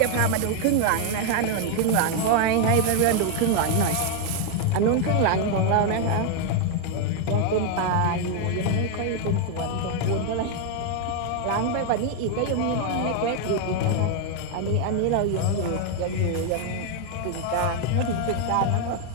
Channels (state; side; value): different; both; correlation 0.01